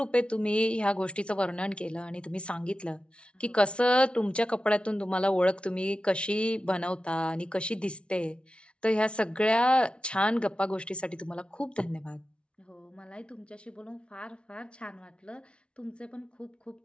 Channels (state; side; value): late; right; 0.058 ms